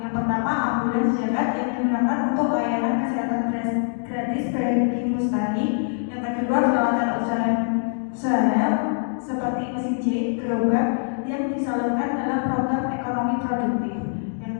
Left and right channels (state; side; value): silent; right; digital silence